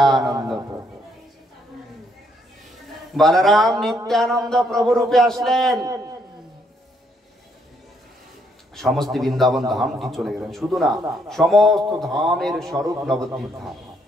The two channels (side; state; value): both; normal; correlation 0.72